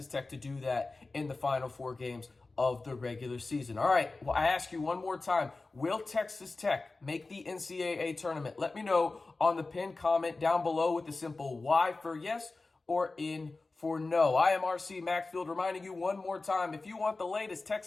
Tech to do that in the final 4 games. of the regular season. All right, well, I ask you one more time, will Texas Tech make the NCAA tournament? Let me know on the pinned comment down below with the simple Y for yes or N for no. I am RC Maxfield, reminding you one more time, if you want the latest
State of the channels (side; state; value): right; quieter; 3.5 dB